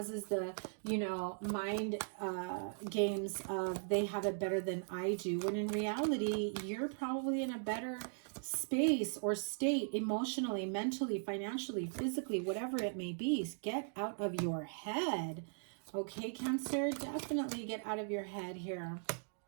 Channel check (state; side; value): silent; left; digital silence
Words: the, you know, mind games of they have it better than I do. When in reality, you're probably in a better space or state emotionally, mentally, financially, physically, whatever it may be. Get out of your head. Okay, Cancer, definitely get out of your head here.